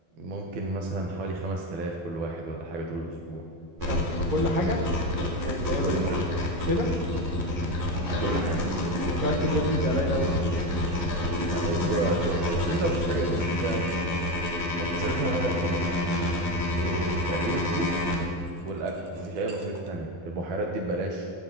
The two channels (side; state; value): left; late; 11 ms